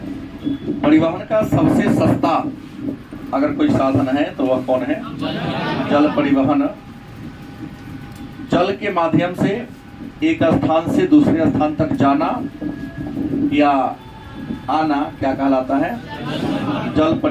परिवहन का सबसे सस्ता अगर कोई साधन है तो वह कौन है? जल परिवहन। जल के माध्यम से एक स्थान से दूसरे स्थान तक जाना या आना क्या कहलाता है? जल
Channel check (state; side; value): identical; both; correlation 1.00